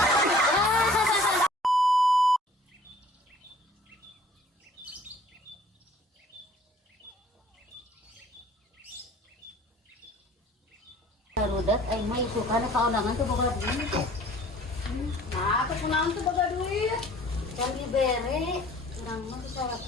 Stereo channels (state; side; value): normal; both; correlation 0.52